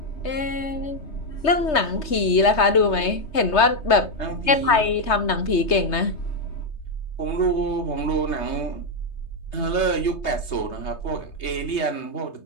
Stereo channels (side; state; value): right; late; 3.2 ms